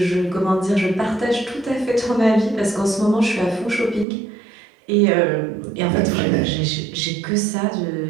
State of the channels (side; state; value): left; drops out; at 4.0 s